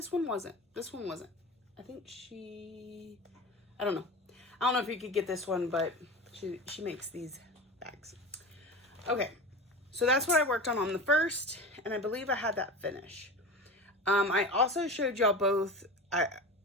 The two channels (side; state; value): both; normal; correlation 0.30